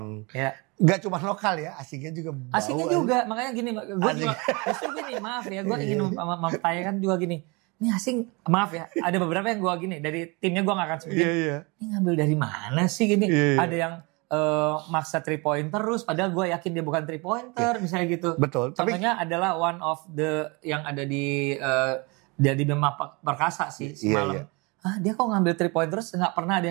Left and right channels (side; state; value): left; quieter; 28.1 dB